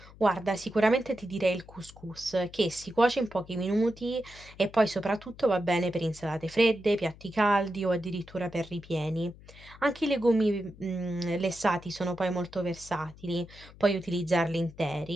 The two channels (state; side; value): noise; left; hum, 21 dB below the sound